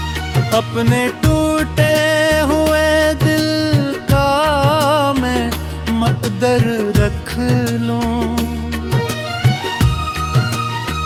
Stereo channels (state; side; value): identical; both; correlation 1.00